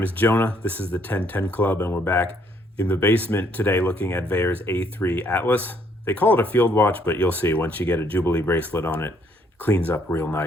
is Jonah. This is the 1010 Club, and we're back in the basement today looking at Vaer's A3 Atlas. They call it a field watch, but you'll see once you get a Jubilee bracelet on it, it cleans up real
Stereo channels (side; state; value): both; normal; correlation 0.67